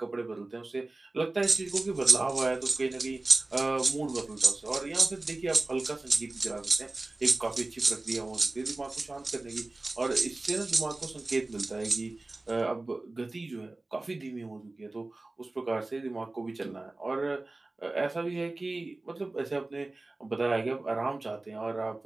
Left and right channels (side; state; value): left; quieter; 3.0 dB